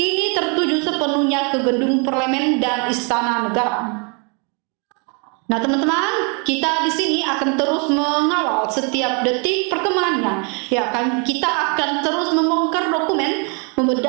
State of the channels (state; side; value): quieter; left; 35.6 dB